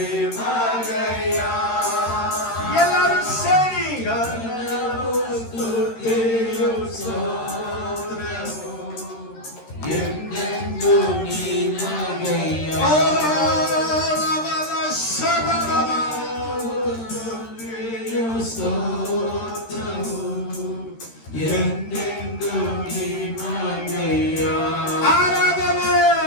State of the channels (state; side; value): late; right; 13 ms